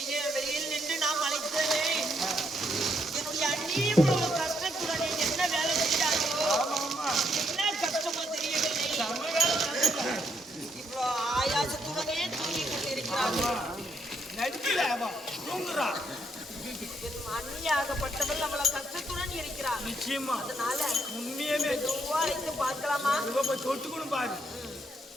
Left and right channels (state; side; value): normal; both; correlation 0.74